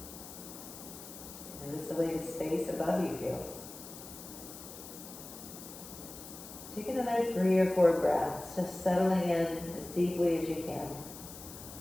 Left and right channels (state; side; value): noise; left; hiss, 14 dB below the sound